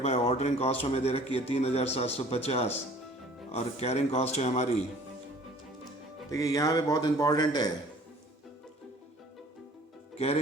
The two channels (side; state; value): both; normal; correlation 0.51